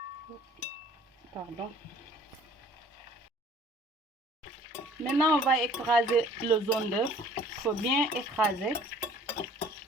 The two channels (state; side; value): normal; both; correlation 0.53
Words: Pardon. Maintenant on va écraser le jaune d'œuf. Il faut bien écraser.